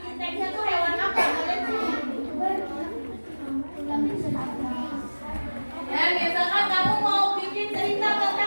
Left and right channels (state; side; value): inverted; both; correlation -1.00